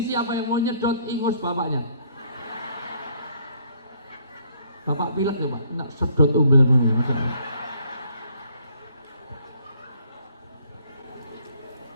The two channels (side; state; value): both; inverted; correlation -0.64